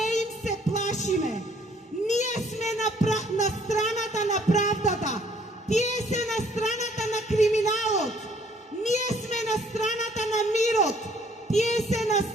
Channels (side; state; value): both; normal; correlation 0.62